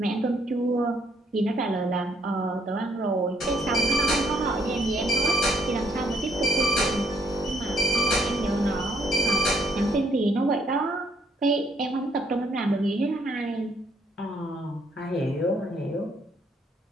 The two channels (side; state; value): both; normal; correlation 0.68